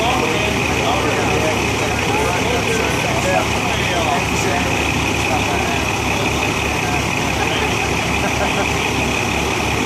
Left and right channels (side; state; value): both; identical; correlation 1.00